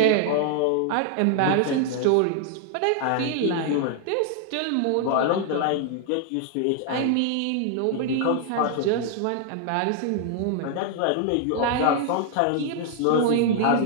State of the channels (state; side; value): different; both; correlation 0.00